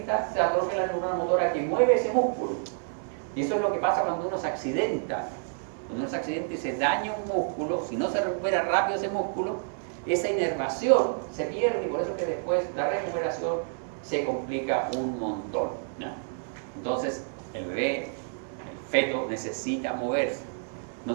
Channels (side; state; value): left; silent; 59 dB below the other